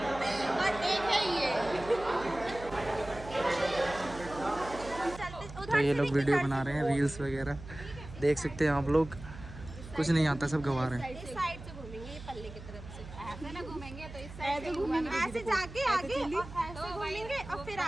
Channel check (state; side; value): noise; right; hum, 14 dB below the sound